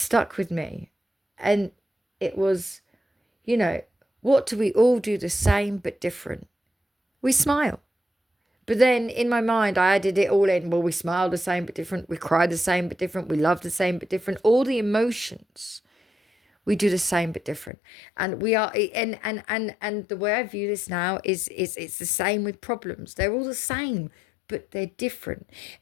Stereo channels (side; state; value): right; drops out; at 17.7 s